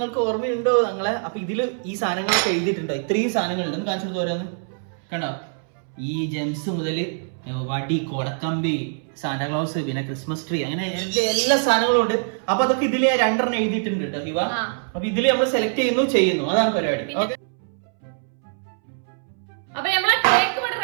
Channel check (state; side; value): silent; left; 63 dB below the other